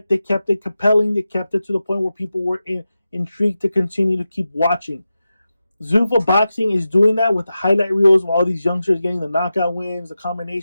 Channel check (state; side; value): inverted; both; correlation -0.92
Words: they kept it compelling. They kept it to the point where people were intrigued to continue to keep watching. Zuffa Boxing is doing that with the highlight reels of all these youngsters getting the knockout wins, the